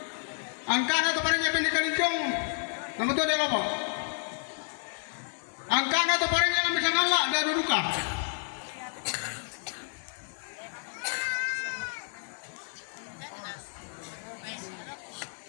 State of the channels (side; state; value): right; silent; 58 dB below the other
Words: Angkana atau parengnya bendi kalicong? Nama tu ada apa? Angkana atau parengnya yang bisa ngalak dah duduka.